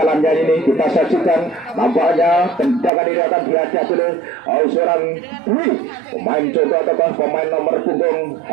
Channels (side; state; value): left; drops out; at 2.9 s